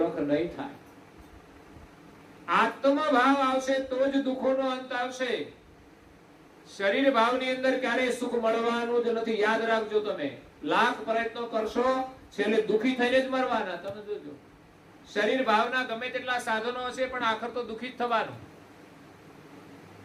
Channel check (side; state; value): both; identical; correlation 1.00